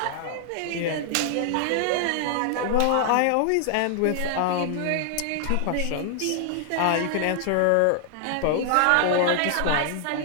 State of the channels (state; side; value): different; both; correlation 0.00